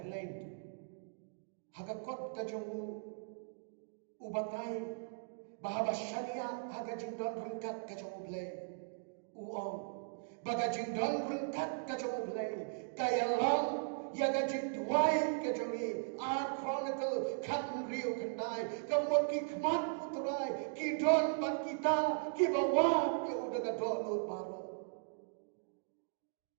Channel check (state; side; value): silent; left; digital silence